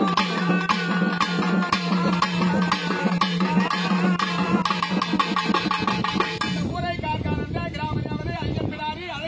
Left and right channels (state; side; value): identical; both; correlation 1.00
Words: ஊரை காக்கானந்த கிராம ஐயன் பிடாரி